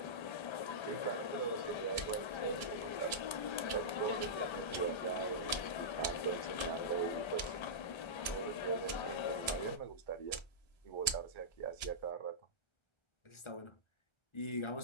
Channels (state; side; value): late; right; 1.3 ms